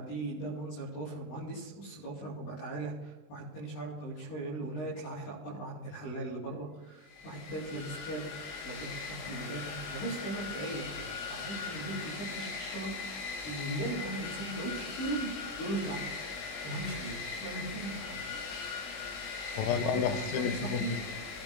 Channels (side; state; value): right; late; 20 ms